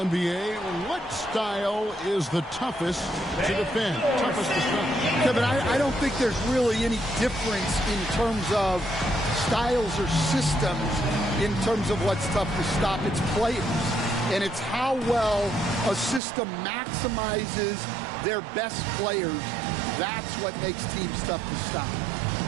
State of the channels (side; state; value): left; drops out; at 16.2 s